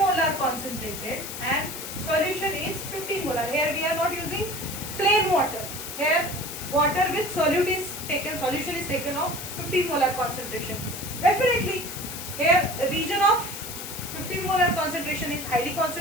concentrated and solution is 15 molar. Here we are not using plain water. Here water with solute is taken, solution is taken of 15 molar concentration. Definitely here region of 15 molar concentration is highly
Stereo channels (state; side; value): noise; left; hiss, 8 dB below the sound